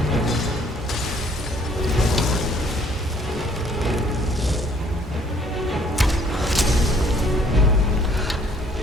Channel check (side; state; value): both; normal; correlation 0.61